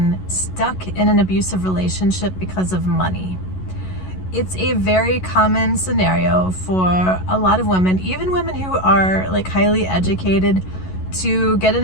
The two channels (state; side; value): late; right; 11 ms